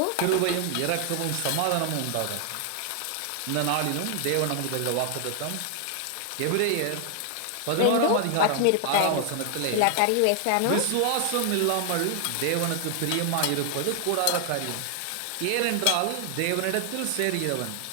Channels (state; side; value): different; both; correlation 0.00